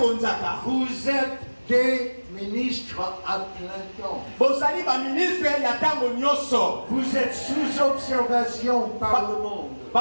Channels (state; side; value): inverted; both; correlation -1.00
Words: vous êtes des ministres à plein temps. Vous êtes sous observation par le monde.